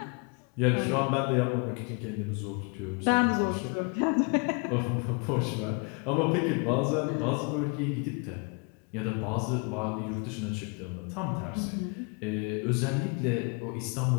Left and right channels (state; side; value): quieter; right; 33.3 dB